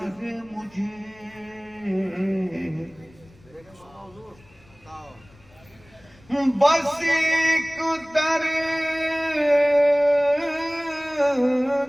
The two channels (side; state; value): left; noise; rumble, 27 dB below the sound